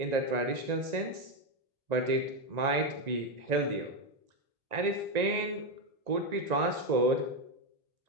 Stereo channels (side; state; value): left; late; 1.9 ms